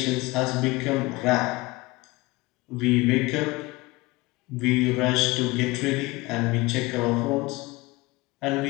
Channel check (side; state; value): right; quieter; 22.2 dB